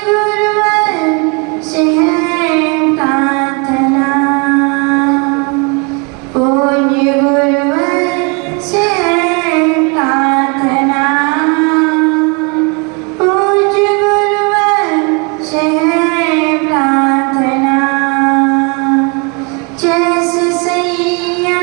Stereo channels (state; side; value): quieter; left; 32.4 dB